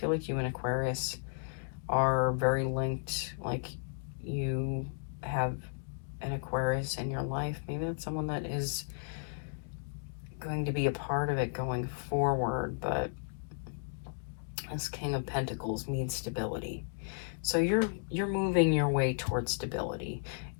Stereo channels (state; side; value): silent; right; digital silence